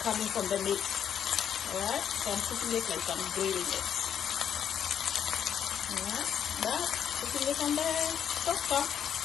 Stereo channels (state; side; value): quieter; right; 8.8 dB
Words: coming from the meat. Alright? So I'm cooking it like I'm grilling it. Alright? But putting it on the stove